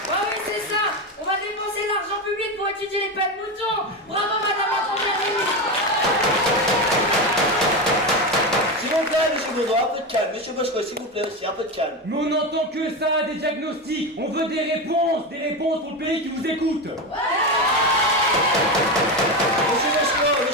Oui, c'est ça. On va dépenser l'argent public pour étudier les pets de moutons. Bravo, madame la première ministre. S'il vous plaît, monsieur Baudouin, un peu de calme. Monsieur Boschko, s'il vous plaît aussi, un peu de calme. Mais on n'entend que ça, des diagnostics. On veut des réponses pour le pays qui vous écoute.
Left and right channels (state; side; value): normal; both; correlation 0.16